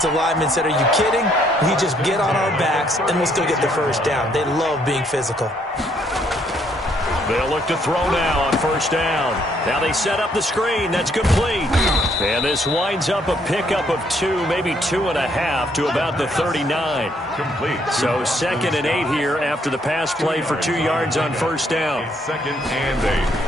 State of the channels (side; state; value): both; normal; correlation 0.69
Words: lineman said, are you kidding? We just get on our backs and we'll still get the 1st down. They love being physical. They'll look to throw now on 1st down. Now they set up the screen. That's complete. And this winds up a pickup of 2, maybe 2.5 to about the 39. Complete. So 2nd and 8 here after the pass play for 2 yards on 1st down. 2nd and 8